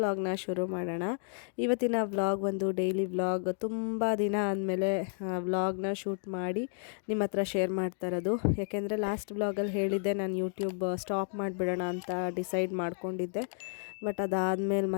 ಶುರು ಮಾಡೋಣ. ಇವತ್ತಿನ ವ್ಲಾಗ್ ಒಂದು ಡೈಲಿ ವ್ಲಾಗ್. ತುಂಬ ದಿನ ಆದಮೇಲೆ ವ್ಲಾಗ್ನ ಶೂಟ್ ಮಾಡಿ ನಿಮ್ಮ ಹತ್ರ ಶೇರ್ ಮಾಡ್ತಾ ಇರೋದು. ಯಾಕೆಂದರೆ ಲಾಸ್ಟ್ ವ್ಲಾಗಲ್ಲಿ ಹೇಳಿದ್ದೆ ನಾನು ಯೂಟ್ಯೂಬ್ ಸ್ಟಾಪ್ ಮಾಡಿಬಿಡೋಣ ಅಂತ ಡಿಸೈಡ್ ಮಾಡ್ಕೊಂಡಿದ್ದೆ. ಬಟ್ ಅದಾದಮೇಲೆ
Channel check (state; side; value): silent; right; 57 dB below the other